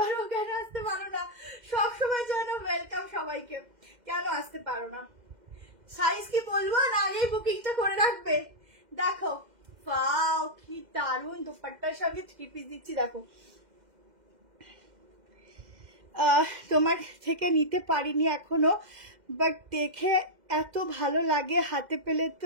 কেন আসতে পারো না, সবসময় জন্য ওয়েলকাম সবাইকে, কেন আসতে পারো না। সাইজ কি বলবো না, আগেই বুকিংটা করে রাখবে। দেখো ওয়াও কি দারুণ, দোপাট্টার সঙ্গে 3 পিস দিচ্ছি। দেখো তোমার থেকে নিতে পারিনি এখনো, বাট দেখে এত ভালো লাগে, হাতে পেলে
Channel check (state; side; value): late; left; 2.1 ms